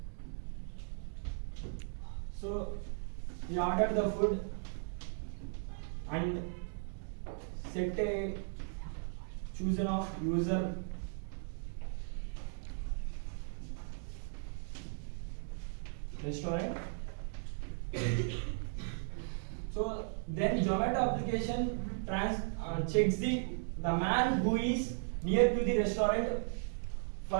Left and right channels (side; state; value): left; silent; digital silence